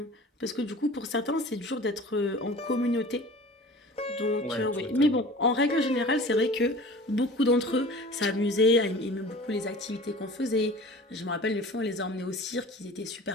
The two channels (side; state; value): both; normal; correlation 0.41